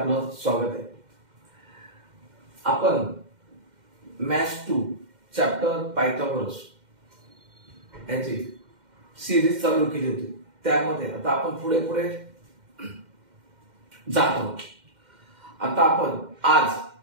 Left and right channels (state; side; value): late; left; 2.1 ms